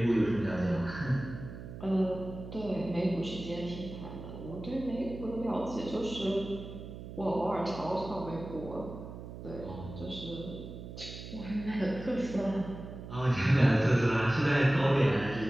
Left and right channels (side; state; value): right; noise; hum, 11 dB below the sound